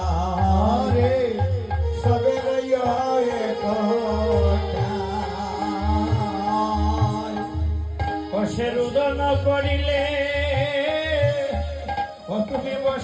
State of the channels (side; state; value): both; identical; correlation 1.00